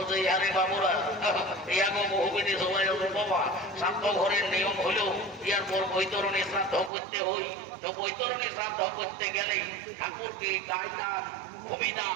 ইয়ারে বাবুরা ইয়াগো বহুবিধি সবাই বাবা শ্রাদ্ধ ঘরের নিয়ম হলো ইয়ার পর বৈতরণী শ্রাদ্ধ করতে হই তো বৈতরণী শ্রাদ্ধ করতে গেলে ঠাকুরকে গায়দান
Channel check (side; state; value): left; drops out; at 6.9 s